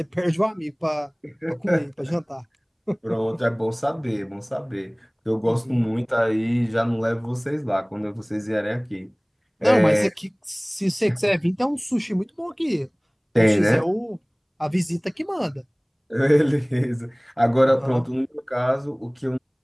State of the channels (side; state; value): both; identical; correlation 1.00